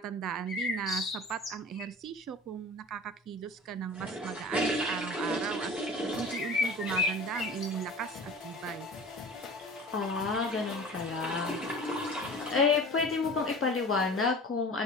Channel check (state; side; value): normal; both; correlation 0.39